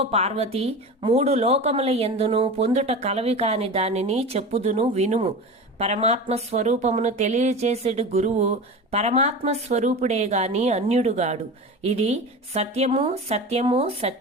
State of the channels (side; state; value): both; normal; correlation 0.30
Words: పార్వతి, 3 లోకముల యందును పొందుట కలవి కాని దానిని చెప్పుదును వినుము. పరమాత్మ స్వరూపమును తెలియచేసేడు గురువు పరమాత్మ స్వరూపుడే గాని అన్యుడుగాడు. ఇది సత్యము సత్యము